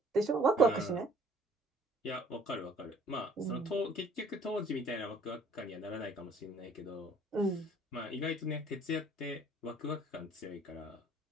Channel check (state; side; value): normal; both; correlation 0.56